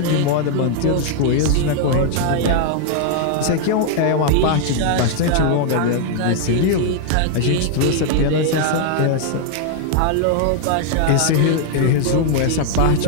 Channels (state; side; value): different; both; correlation 0.00